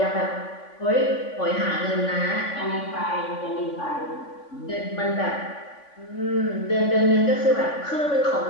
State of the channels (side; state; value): right; late; 3.5 ms